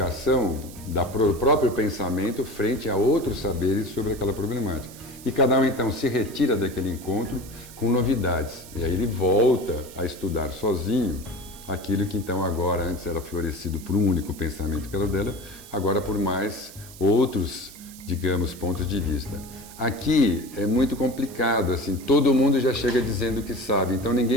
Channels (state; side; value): noise; right; hiss, 18 dB below the sound